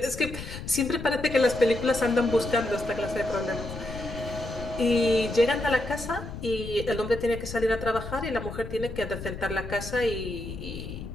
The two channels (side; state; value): left; noise; rumble, 10 dB below the sound